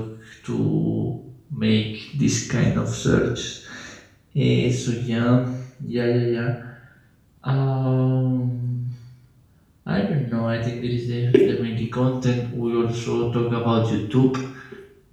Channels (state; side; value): identical; both; correlation 1.00